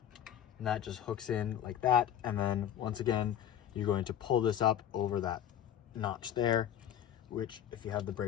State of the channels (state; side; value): quieter; right; 10.3 dB